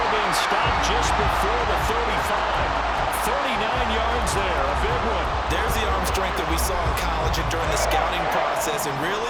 being stopped just before the 35. 39 yards there. A big one. There's the arm strength that we saw in college and during the scouting process. And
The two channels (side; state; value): both; identical; correlation 1.00